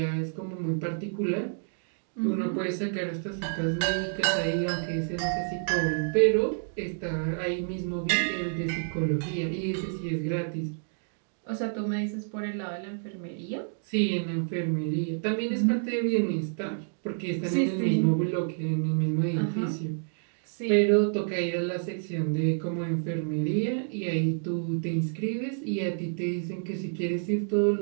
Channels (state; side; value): silent; left; digital silence